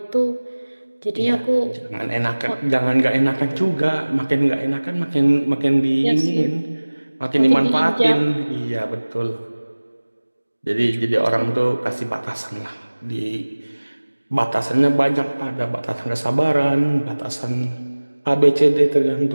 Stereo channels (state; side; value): inverted; both; correlation -1.00